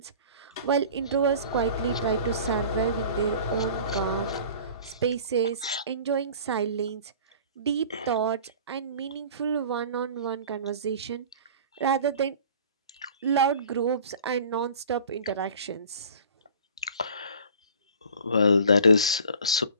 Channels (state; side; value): inverted; both; correlation -0.44